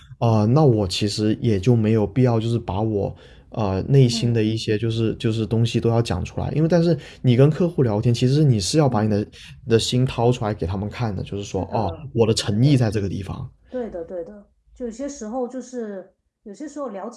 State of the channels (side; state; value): both; identical; correlation 1.00